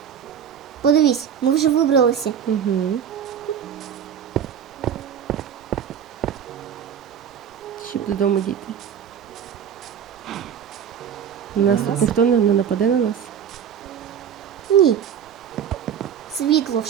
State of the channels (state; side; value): quieter; left; 8.6 dB